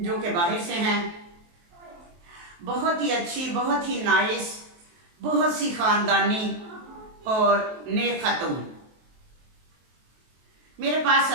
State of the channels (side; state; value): left; late; 23 ms